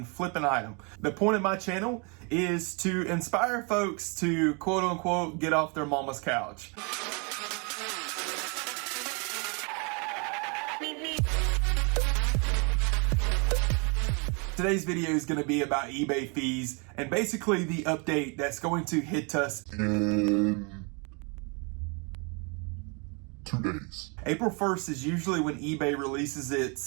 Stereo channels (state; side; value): quieter; left; 33.4 dB